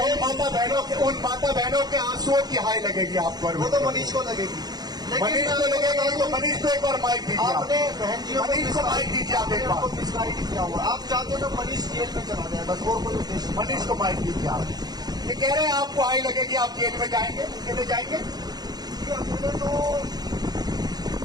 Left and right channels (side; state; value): left; late; 0.19 ms